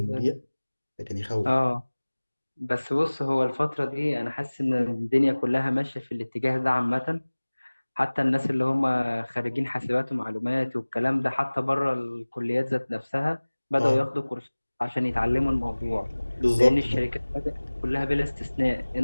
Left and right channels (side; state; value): both; inverted; correlation -1.00